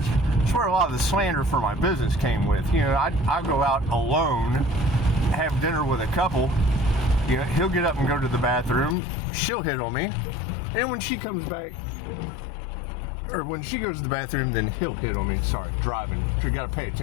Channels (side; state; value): right; drops out; at 9.0 s